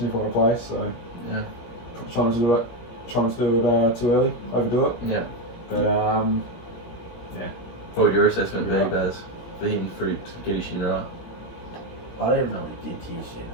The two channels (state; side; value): late; right; 17 ms